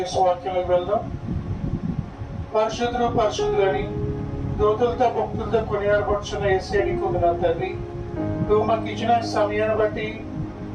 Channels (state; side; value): identical; both; correlation 1.00